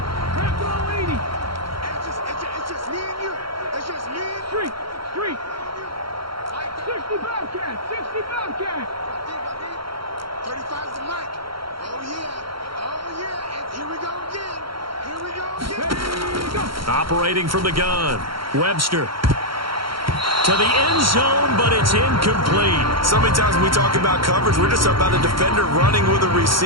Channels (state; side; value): late; left; 0.74 ms